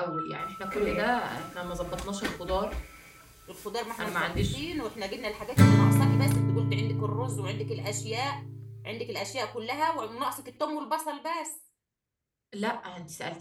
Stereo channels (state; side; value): identical; both; correlation 1.00